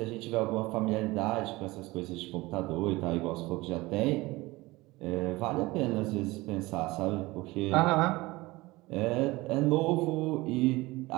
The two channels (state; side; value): quieter; left; 20.9 dB